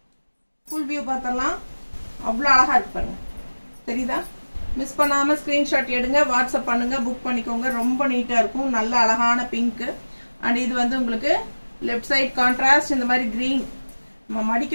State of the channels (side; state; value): both; inverted; correlation -1.00